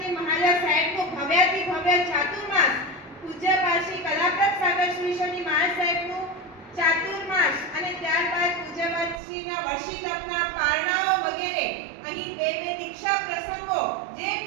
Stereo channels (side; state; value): left; drops out; at 9.2 s